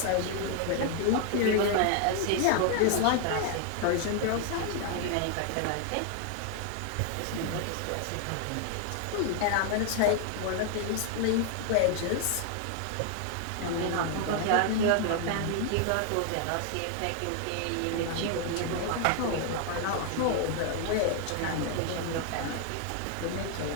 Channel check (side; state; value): both; different; correlation 0.00